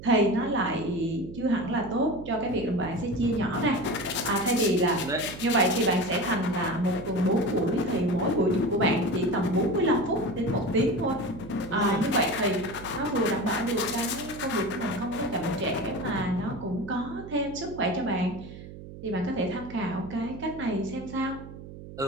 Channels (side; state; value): right; noise; hum, 14 dB below the sound